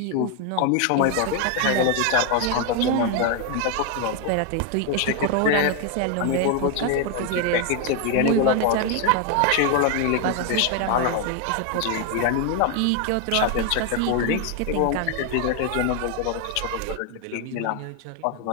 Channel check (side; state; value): both; different; correlation 0.01